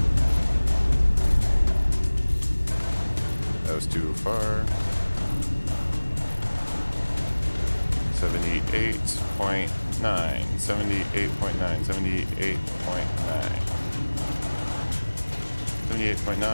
That was too far. 78.9. 78.9.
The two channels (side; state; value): both; inverted; correlation -1.00